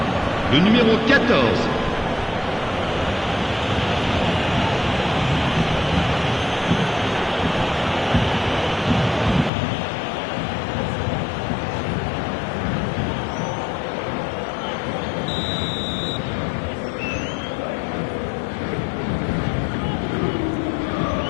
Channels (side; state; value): right; drops out; at 9.5 s